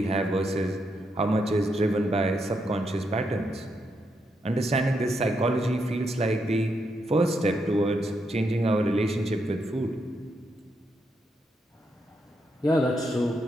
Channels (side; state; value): both; normal; correlation 0.80